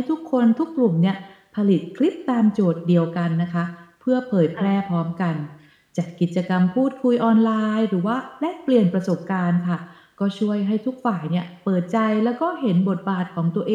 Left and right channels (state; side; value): identical; both; correlation 1.00